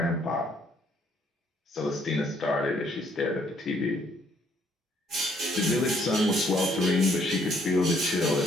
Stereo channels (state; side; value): normal; both; correlation 0.67